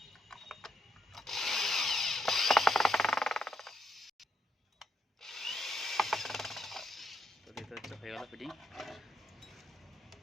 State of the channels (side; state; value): both; normal; correlation 0.78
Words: তো দেখতে পাচ্ছ হয়ে গেল ফিটিং।